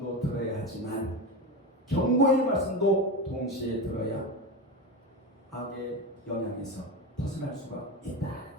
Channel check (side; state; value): both; normal; correlation 0.20